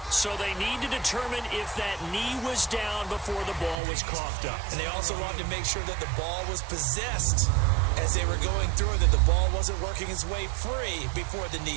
So they need to determine if that knee was down before the ball was coughed up. And they also wanted to make sure that the ball was possessed as they were going through it, that the ball wasn't working its way free before the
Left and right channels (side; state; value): left; drops out; at 3.8 s